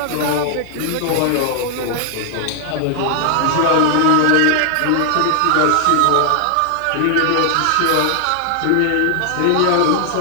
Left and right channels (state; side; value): different; both; correlation 0.00